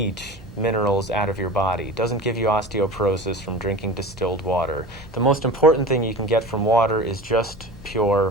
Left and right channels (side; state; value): both; normal; correlation 0.34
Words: minerals out of your body. It doesn't give you osteoporosis from drinking distilled water. The most important thing you can get from water is just